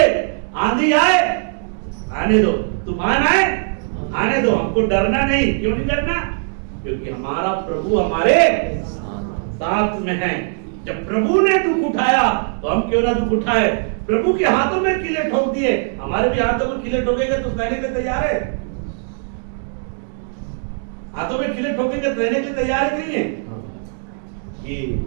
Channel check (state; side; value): silent; left; 66 dB below the other